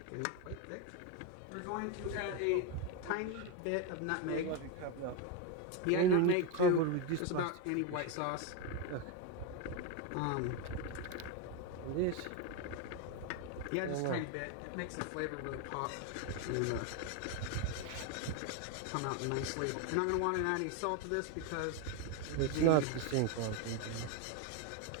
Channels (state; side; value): different; both; correlation 0.03